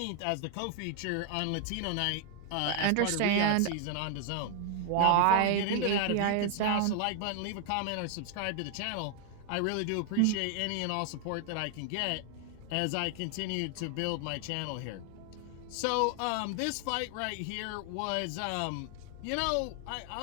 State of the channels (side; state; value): both; different; correlation 0.00